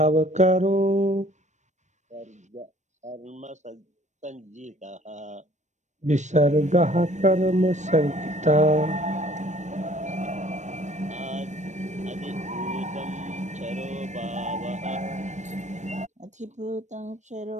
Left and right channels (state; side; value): late; left; 0.34 ms